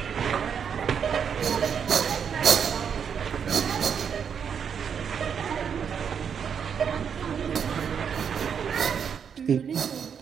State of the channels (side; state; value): left; quieter; 7.3 dB